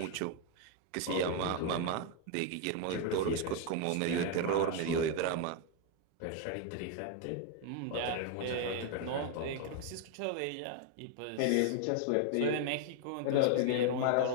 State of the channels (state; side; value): different; both; correlation 0.01